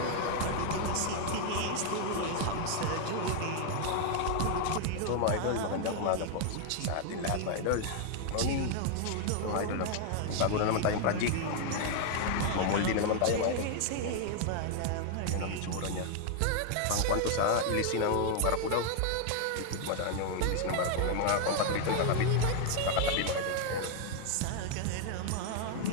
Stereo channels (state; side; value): different; both; correlation 0.00